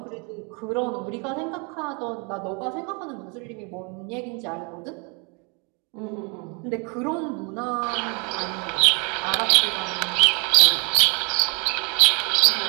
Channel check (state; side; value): quieter; left; 33.3 dB